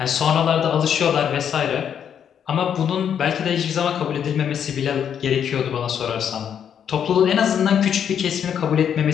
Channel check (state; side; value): quieter; right; 8.5 dB